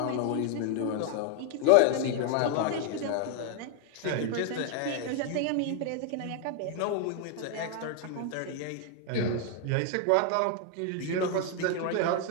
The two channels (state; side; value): different; both; correlation 0.01